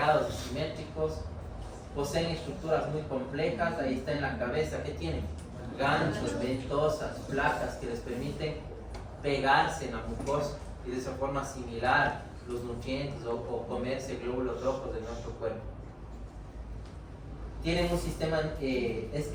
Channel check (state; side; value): identical; both; correlation 1.00